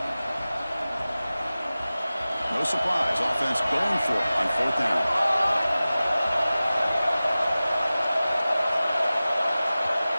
surprise. Offense going for it on 4th down.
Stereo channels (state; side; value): inverted; both; correlation -0.97